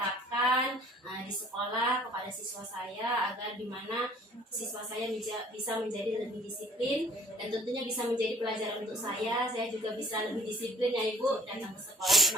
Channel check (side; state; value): both; normal; correlation 0.54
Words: di sekolah kepada siswa saya, agar dimana siswa saya bisa menjadi lebih disiplin, dan tentunya bisa menjadi pelajaran untuk saya juga bisa lebih disiplin ya Ibu, datang ke sekolah